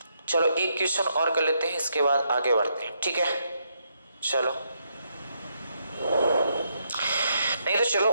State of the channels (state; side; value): inverted; both; correlation -0.77